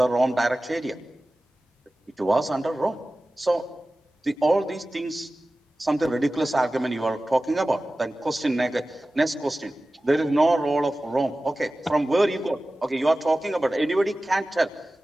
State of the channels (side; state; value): both; normal; correlation 0.96